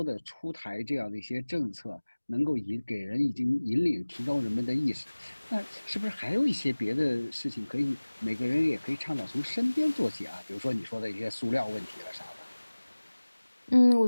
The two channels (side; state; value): both; inverted; correlation -1.00